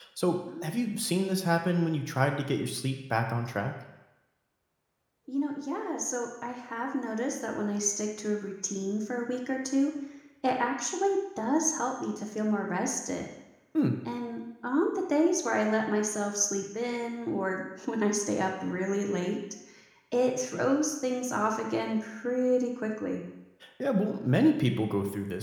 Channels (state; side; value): identical; both; correlation 1.00